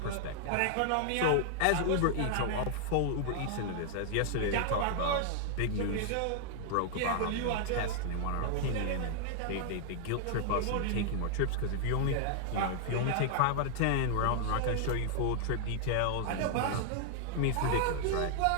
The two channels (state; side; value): different; both; correlation 0.00